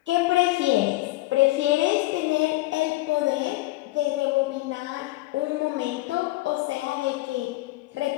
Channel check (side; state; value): right; quieter; 19.4 dB